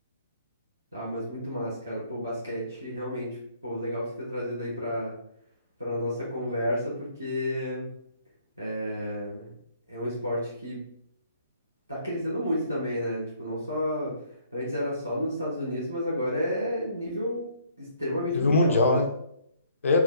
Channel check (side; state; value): both; inverted; correlation -0.64